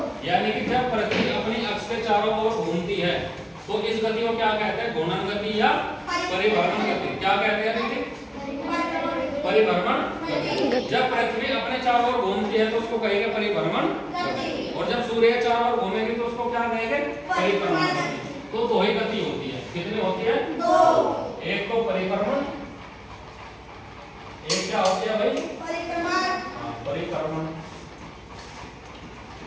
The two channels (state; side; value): identical; both; correlation 1.00